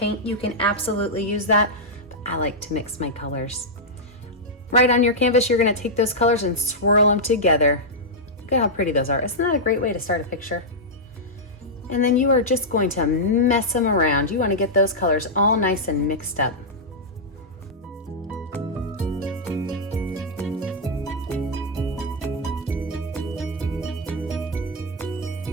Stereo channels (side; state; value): both; normal; correlation -0.07